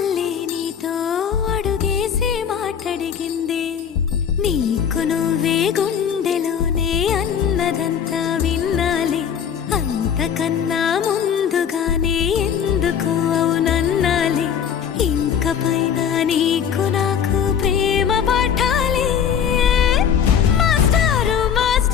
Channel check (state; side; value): quieter; right; 8.1 dB